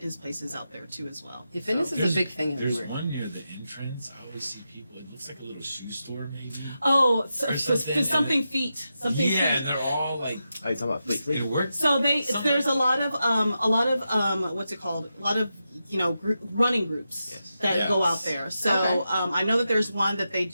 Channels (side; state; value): both; inverted; correlation -0.88